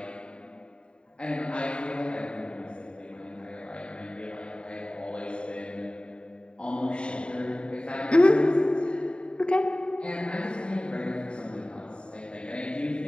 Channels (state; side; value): late; right; 0.052 ms